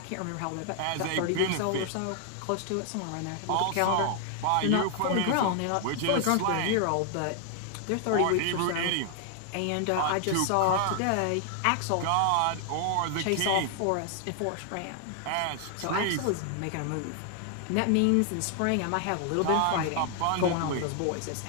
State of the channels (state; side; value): different; both; correlation 0.00